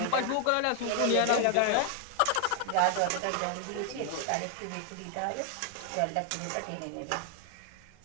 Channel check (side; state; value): both; different; correlation 0.00